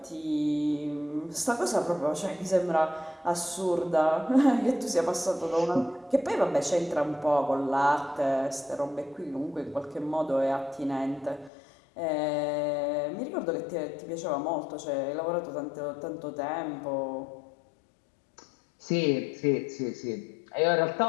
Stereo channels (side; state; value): right; drops out; at 11.5 s